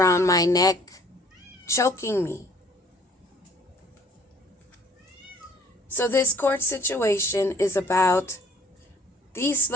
my neck, choking me. So this court situation is about these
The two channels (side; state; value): both; normal; correlation 0.56